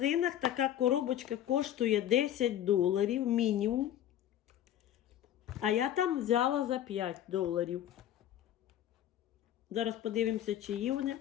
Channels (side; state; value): right; quieter; 11.4 dB